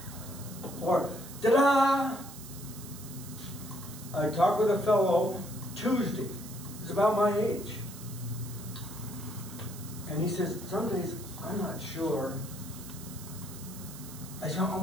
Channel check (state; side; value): noise; right; hiss, 14 dB below the sound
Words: or ta-da! I talked with a fellow Tuesday. He's about my age. And he says, some days I'm not sure. I